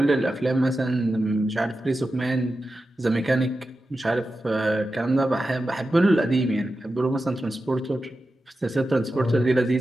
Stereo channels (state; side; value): normal; both; correlation 0.92